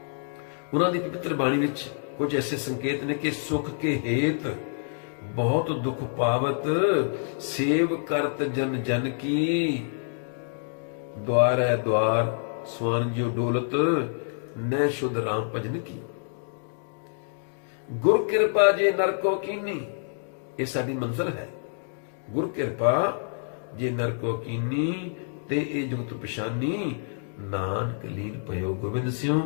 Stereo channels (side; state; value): right; silent; digital silence